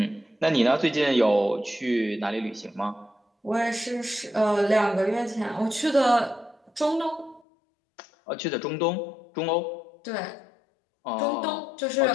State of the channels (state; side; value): drops out; right; at 7.4 s